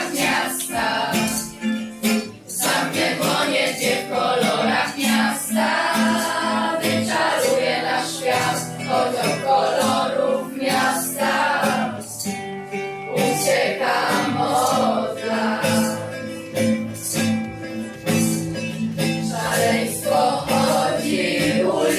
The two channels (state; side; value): identical; both; correlation 1.00